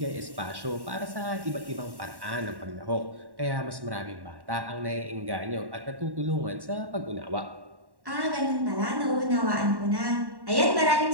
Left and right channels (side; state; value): left; late; 1.1 ms